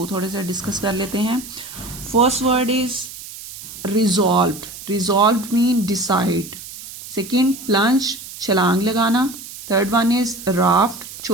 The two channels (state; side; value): noise; right; hiss, 13 dB below the sound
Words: थोड़े से डिस्कस कर लेते हैं। First word is resolved. Resolved mean decide. Second plunge, छलांग लगाना। थर्ड वन इज राफ्ट,